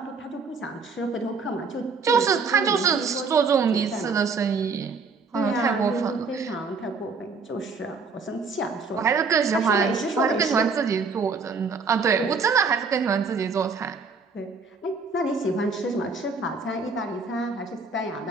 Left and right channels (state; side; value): quieter; left; 4.6 dB